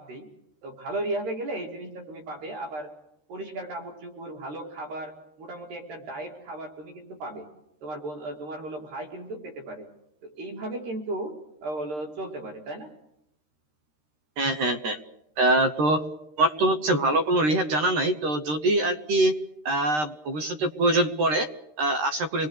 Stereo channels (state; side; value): late; left; 13 ms